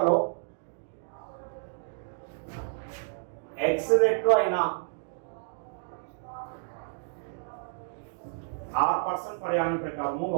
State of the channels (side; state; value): left; silent; digital silence